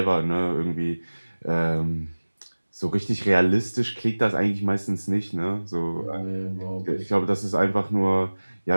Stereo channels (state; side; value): inverted; both; correlation -1.00